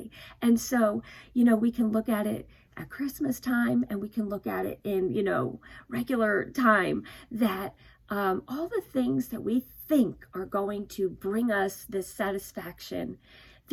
And so, we can look at it at Christmas time and we can look at it in, regular time, that all the things that we think are going to bring us this satisfaction,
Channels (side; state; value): both; identical; correlation 1.00